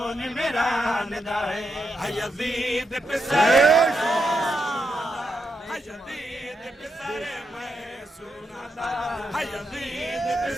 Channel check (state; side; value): normal; both; correlation 0.83